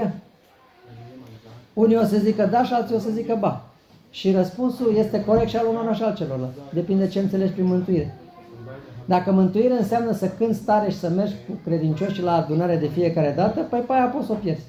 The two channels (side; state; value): both; identical; correlation 1.00